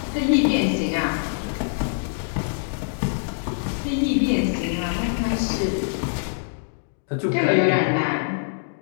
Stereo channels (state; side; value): silent; right; digital silence